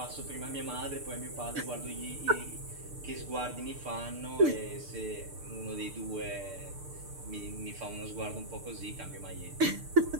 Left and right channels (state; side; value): late; left; 6.7 ms